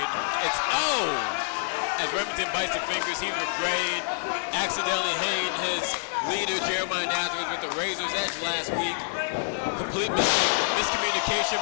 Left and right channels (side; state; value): right; silent; 60 dB below the other